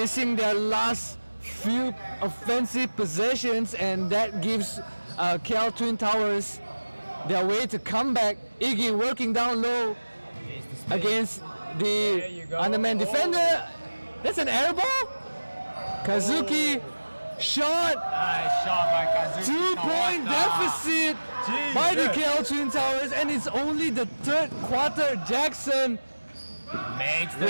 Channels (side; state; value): both; inverted; correlation -1.00